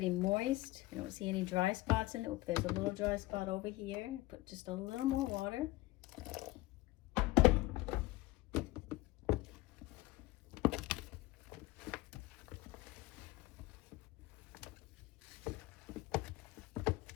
moist. You don't see any dry spots in it. Oop, there's a little dry spot over here. Put just a little more water.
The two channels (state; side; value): quieter; right; 19.3 dB